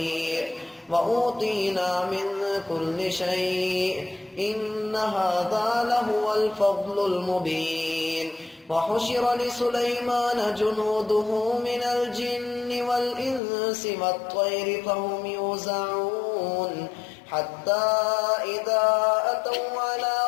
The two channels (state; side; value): drops out; right; at 13.4 s